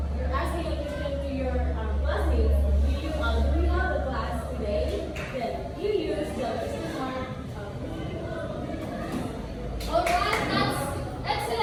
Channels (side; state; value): both; identical; correlation 1.00